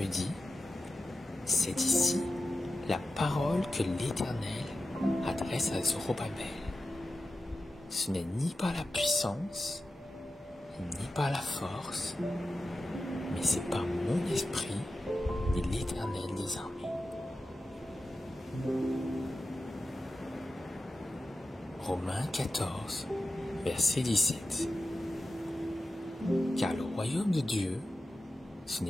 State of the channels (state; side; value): normal; both; correlation 0.93